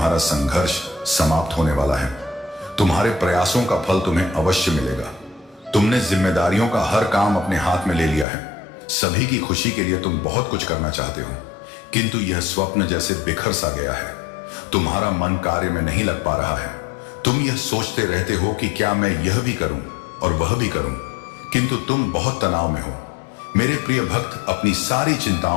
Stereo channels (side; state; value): right; drops out; at 8.2 s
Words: संघर्ष समाप्त होने वाला है। तुम्हारे प्रयासों का फल तुम्हें अवश्य मिलेगा। तुमने जिम्मेदारियों का हर काम अपने हाथ में ले लिया है। सभी की खुशी के लिए तुम बहुत कुछ करना चाहते हो, किंतु यह स्वप्न जैसे बिखर सा गया है। तुम्हारा मन कार्य में नहीं लग पा रहा है। तुम यह सोचते रहते हो कि क्या मैं यह भी करूं और वह भी करूं, किंतु तुम बहुत तनाव में हो। मेरे प्रिय भक्त, अपनी सारी